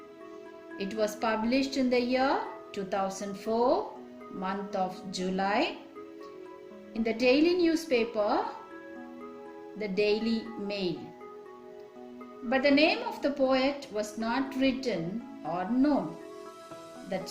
It was published in the year 2004, month of July, in the daily newspaper, the Daily Mail. But the name of the poet was not written or known.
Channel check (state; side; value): identical; both; correlation 1.00